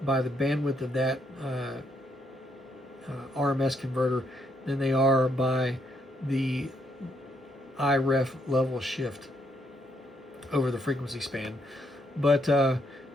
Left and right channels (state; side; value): normal; both; correlation 0.74